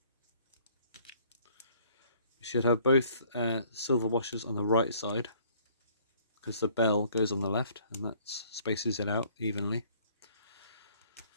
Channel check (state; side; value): inverted; both; correlation -0.59